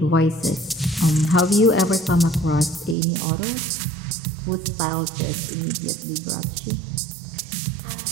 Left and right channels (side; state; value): left; drops out; at 3.0 s